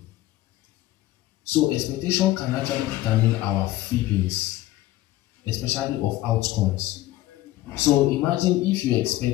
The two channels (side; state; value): right; quieter; 15.9 dB